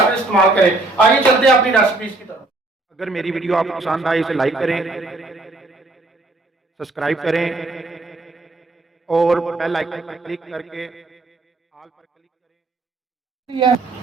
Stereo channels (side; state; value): left; quieter; 3.1 dB